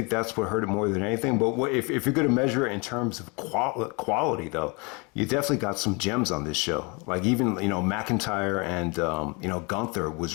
that's what hurt it more than anything. But if you're going to measure it in terms of quality, though, you definitely got some gems on this show. Like even, McIntyre and, Gunther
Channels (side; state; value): right; quieter; 29.9 dB